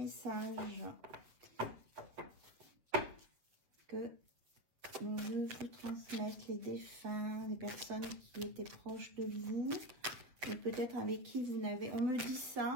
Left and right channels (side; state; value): left; late; 7.8 ms